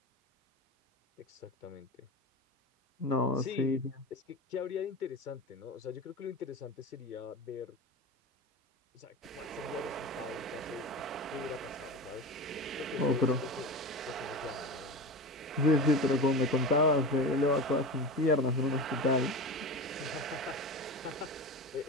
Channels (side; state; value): both; normal; correlation 0.26